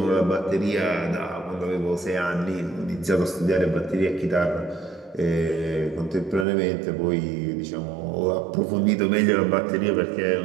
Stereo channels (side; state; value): left; drops out; at 6.5 s